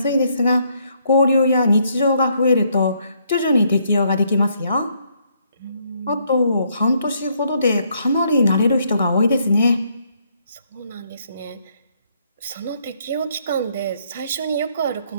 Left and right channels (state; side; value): inverted; both; correlation -0.71